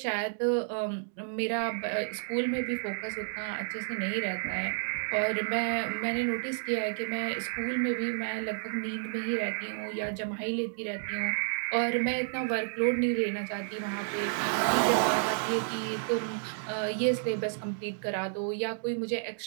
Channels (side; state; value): left; silent; digital silence